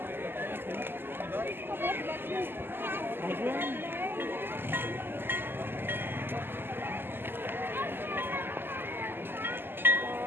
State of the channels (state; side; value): late; left; 0.10 ms